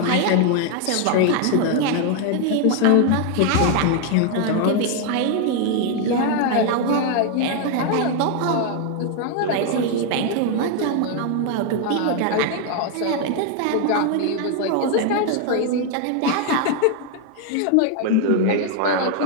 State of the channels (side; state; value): both; different; correlation 0.01